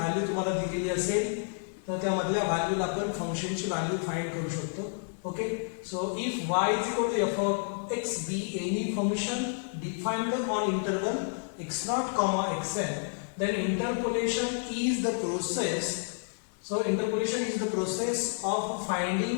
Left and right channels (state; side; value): silent; right; 58 dB below the other